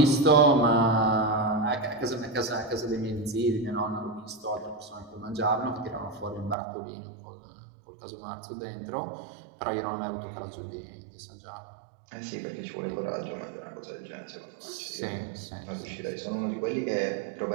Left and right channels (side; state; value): left; drops out; at 6.6 s